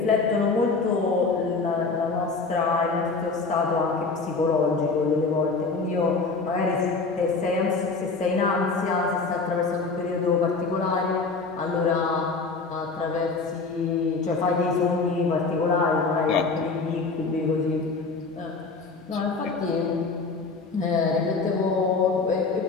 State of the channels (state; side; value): quieter; right; 4.2 dB